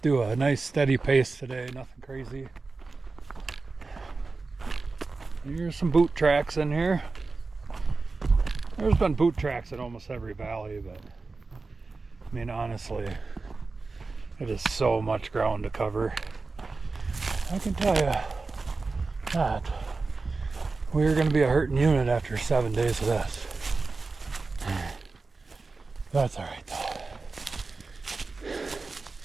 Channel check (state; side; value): quieter; left; 3.9 dB